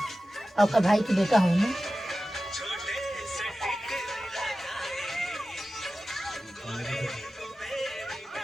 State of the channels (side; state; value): both; normal; correlation 0.94